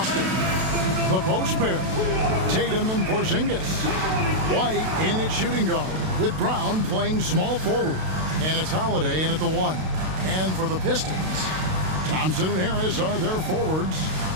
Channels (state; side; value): late; left; 32 ms